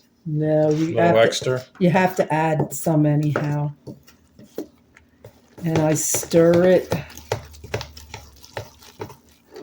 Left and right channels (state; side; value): identical; both; correlation 1.00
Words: No, you have to add some anyhow. And I stir it.